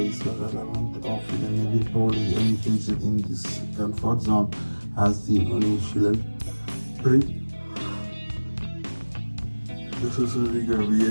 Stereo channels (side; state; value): both; inverted; correlation -1.00